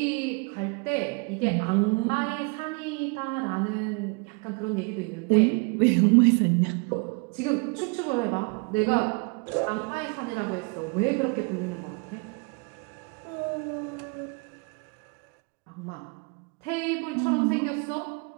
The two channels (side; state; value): left; quieter; 33.3 dB